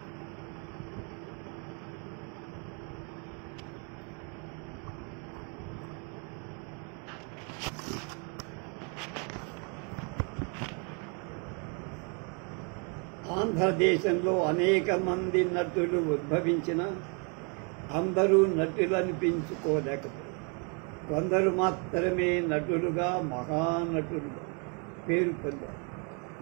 ఆంధ్రదేశంలో అనేక మంది నటులు ఉద్భవించిన అందరూ నటులు అనిపించుకోలేకపోయారు. కొందరు మాత్రమే నటులుగా మహానటులుగా పేరు పొందారు.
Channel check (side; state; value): left; quieter; 36.6 dB